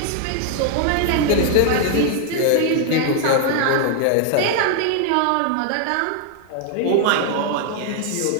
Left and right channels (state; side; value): different; both; correlation 0.00